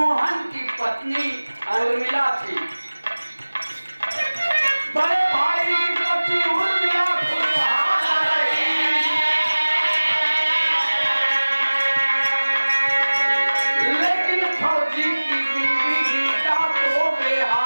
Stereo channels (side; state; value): both; inverted; correlation -1.00